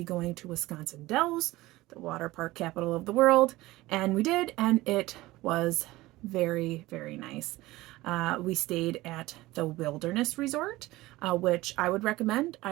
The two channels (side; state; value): left; quieter; 18.7 dB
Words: going to Wisconsin Dells, the water park capital of the world, and we did, and it was very, very nice. We stayed at the Wilderness Resort, which I would recommend.